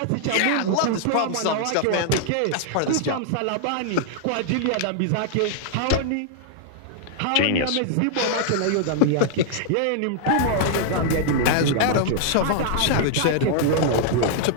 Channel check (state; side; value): different; both; correlation -0.01